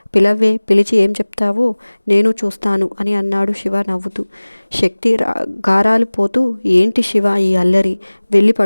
పిలవ్వే, పిలిచి ఏం చెప్తావో నేను చూస్తాను అని అన్నాడు శివ నవ్వుతూ. శక్తి గారాలు పోతూ, ఏంటి శివ ఈ అల్లరి, వెళ్ళి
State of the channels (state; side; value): inverted; both; correlation -1.00